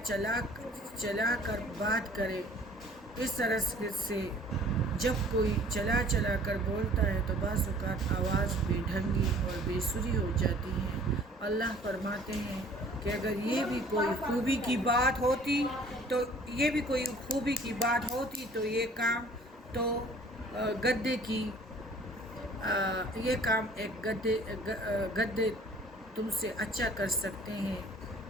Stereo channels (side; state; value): both; normal; correlation 0.52